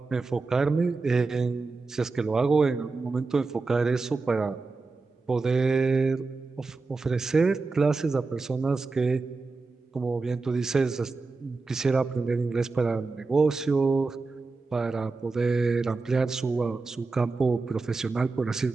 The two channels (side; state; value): left; quieter; 3.9 dB